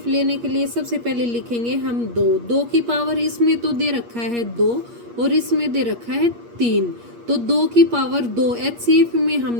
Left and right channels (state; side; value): late; left; 8.5 ms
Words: लेने के लिए सबसे पहले लिखेंगे हम 2 की पावर इसमें तो दे रखा है 2 और इसमें दे रखा है 3, तो 2 की पावर 2 एचसीएफ में हम